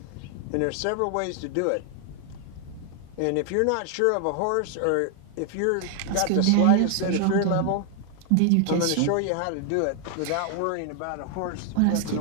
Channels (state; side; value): different; both; correlation 0.00